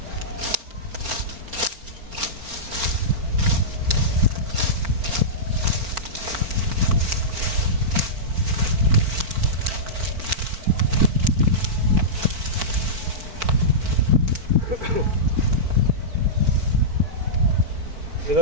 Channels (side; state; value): left; late; 4.5 ms